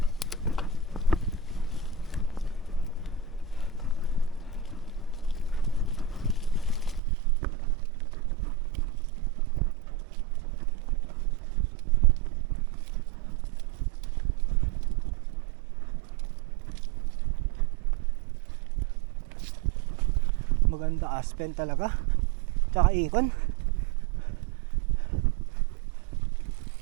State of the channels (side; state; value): left; drops out; at 7.0 s